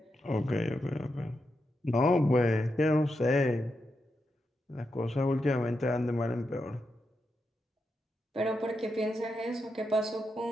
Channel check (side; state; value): both; normal; correlation 0.86